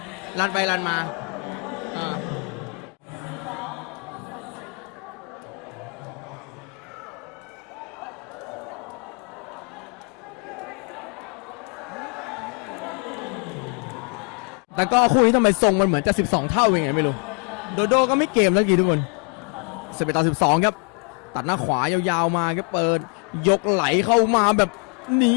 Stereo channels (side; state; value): right; quieter; 39.1 dB